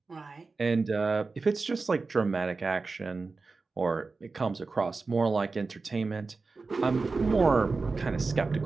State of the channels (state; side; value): quieter; left; 4.0 dB